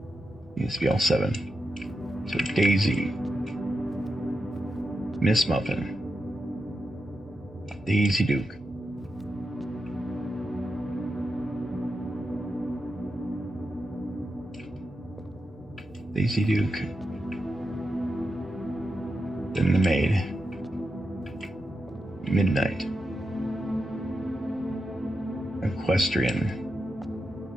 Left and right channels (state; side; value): normal; both; correlation 0.88